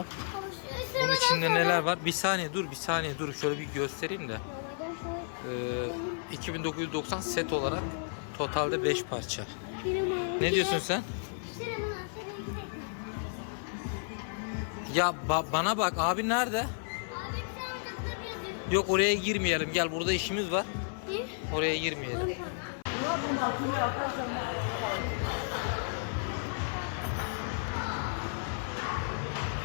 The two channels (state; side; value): silent; right; 56 dB below the other